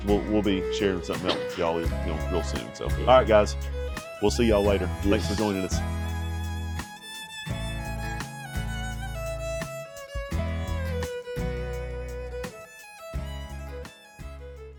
we'll be sharing something else with y'all real soon. So all right, guys, we'll see y'all later. Thanks for joining us.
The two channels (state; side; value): identical; both; correlation 1.00